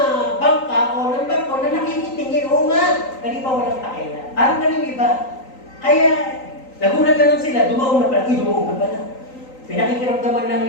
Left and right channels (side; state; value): right; late; 3.9 ms